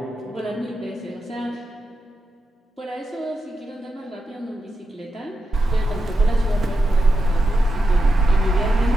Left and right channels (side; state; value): both; normal; correlation 0.88